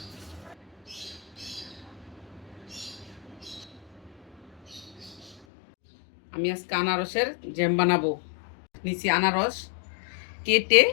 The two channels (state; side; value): drops out; right; at 5.4 s